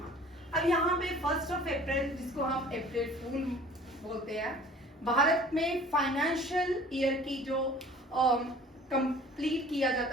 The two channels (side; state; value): both; normal; correlation 0.48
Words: अब यहाँ पे 1 अप्रैल, जिसको हम अप्रैल फूल बोलते हैं, भारत में फाइनेंशियल ईयर की जो कंप्लीट किया